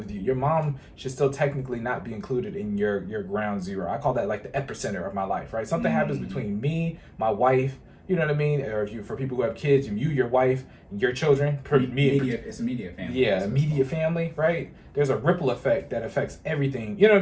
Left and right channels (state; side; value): identical; both; correlation 1.00